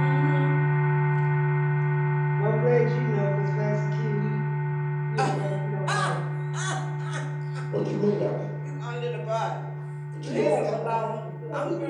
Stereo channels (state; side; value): identical; both; correlation 1.00